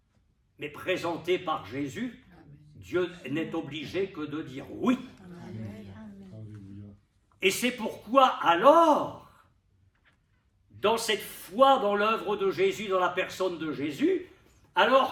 mais présenté par Jésus, Dieu n'est obligé que de dire oui. Et c'est pourquoi alors, dans cette foi dans l'œuvre de Jésus, dans la personne de Jésus,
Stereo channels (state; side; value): identical; both; correlation 1.00